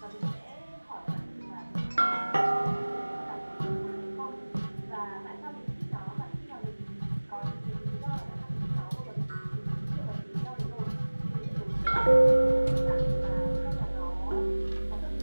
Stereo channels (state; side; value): inverted; both; correlation -1.00